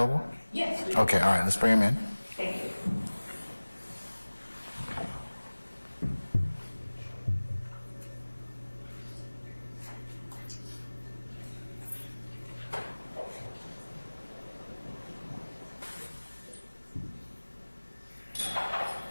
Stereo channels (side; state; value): both; inverted; correlation -1.00